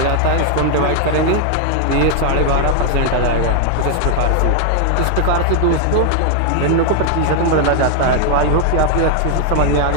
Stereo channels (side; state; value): both; different; correlation 0.00